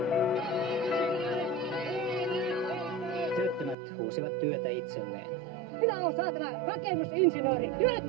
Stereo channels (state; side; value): drops out; left; at 3.8 s